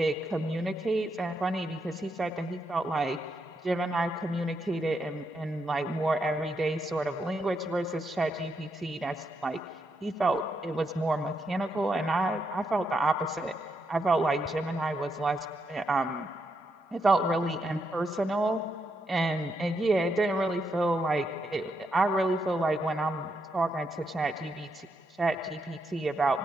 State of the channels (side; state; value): both; normal; correlation 0.81